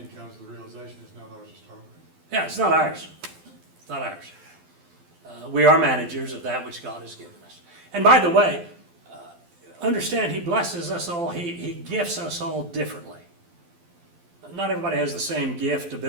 comes the realization it's not ours to start with. Yeah, it's not ours. It's not ours. We are managers of that which God has given us. And by the way, understand He blesses us all, He gifts us all differently. Not everybody has the same gift,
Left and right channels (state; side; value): late; left; 12 ms